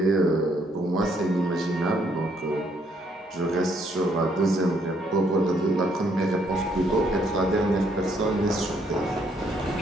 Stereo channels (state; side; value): normal; both; correlation 0.70